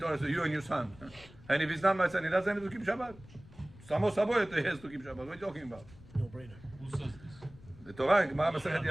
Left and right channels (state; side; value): noise; left; rumble, 21 dB below the sound